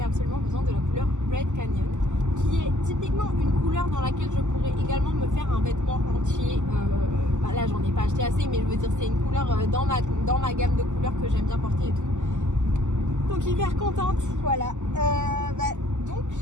absolument besoin de la couleur Red Canyon qui est typiquement une couleur dans laquelle je pourrais également me faire un vêtement entier. Bah là j'en ai pas acheté assez, mais je veux dire c'est une couleur dans ma gamme de couleurs que j'aime bien porter et tout. Donc hyper contente, voilà. Donc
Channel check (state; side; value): late; left; 0.84 ms